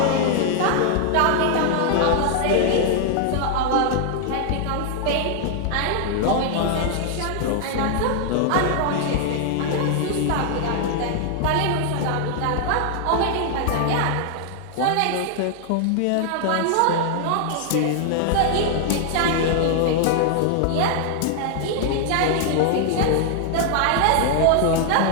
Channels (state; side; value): different; both; correlation 0.00